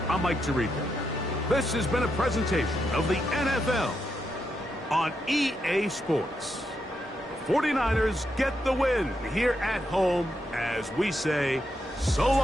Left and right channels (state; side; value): normal; both; correlation 0.82